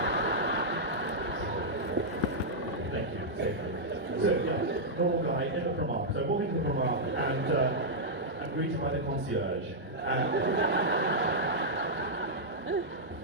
Thank you, safely. So yeah, normal guy in the Primark. So I walk into the Primark and I'm greeted by the concierge.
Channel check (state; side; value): normal; both; correlation -0.07